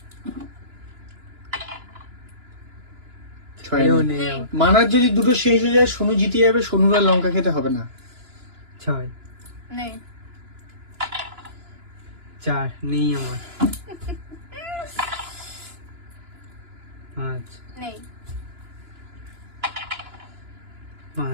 ছয় এও নেই। নেই আমার। মানার যদি দুটো শেষ হয়ে যায় সোনু জিতে যাবে সোনুর আর লঙ্কা খেতে হবে না ছয়। নেই চার নেই আমার। পাঁচ নেই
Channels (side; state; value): left; late; 2.9 ms